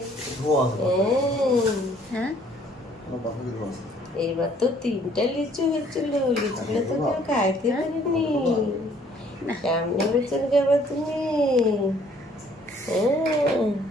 হ্যাঁ, এইবার তো 3টা লিচু হয়েছিল, লিচুগুলো তো কেউ খাইতে পারেনি। সামনে বছর খাবা তুমি। হ্যাঁ,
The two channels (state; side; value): normal; both; correlation 0.60